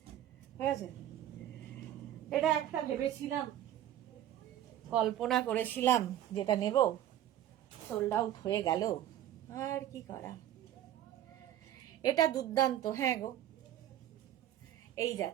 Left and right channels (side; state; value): left; quieter; 12.1 dB